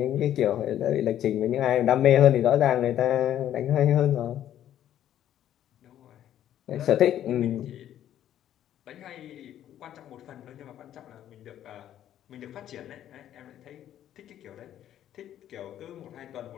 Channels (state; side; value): quieter; right; 11.3 dB